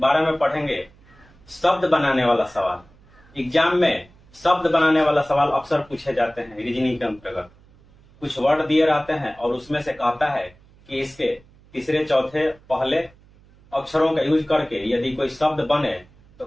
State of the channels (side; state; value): right; noise; hum, 27 dB below the sound